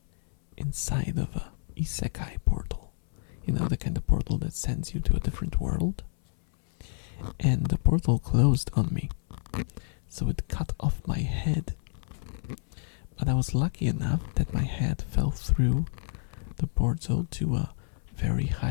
inside of a isekai portal. The kind of portal that sends you to a different world. And the portal closed on me, so it cut off my head. But I was lucky enough that my head fell through the portal to a very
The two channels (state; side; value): silent; right; 59 dB below the other